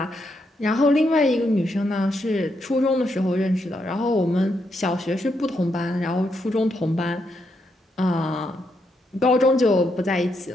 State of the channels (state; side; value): normal; both; correlation 0.80